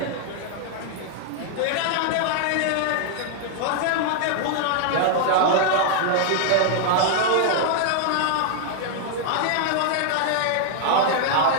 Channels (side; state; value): both; different; correlation -0.01